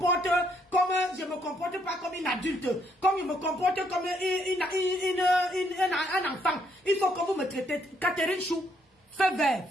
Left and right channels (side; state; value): both; normal; correlation 0.72